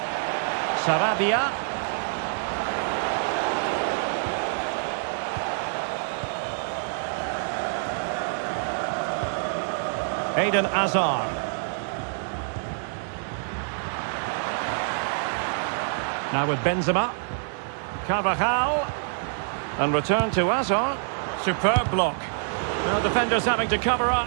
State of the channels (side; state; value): left; silent; digital silence